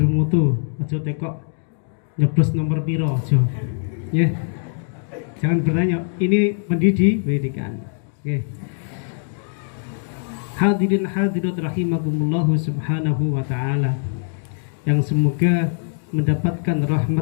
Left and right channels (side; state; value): right; silent; digital silence